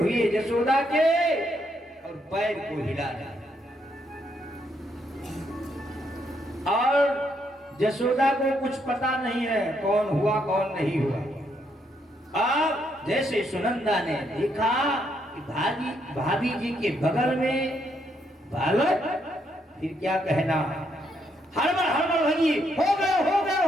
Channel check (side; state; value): both; normal; correlation 0.75